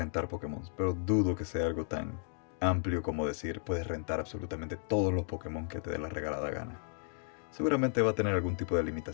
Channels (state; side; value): silent; right; 55 dB below the other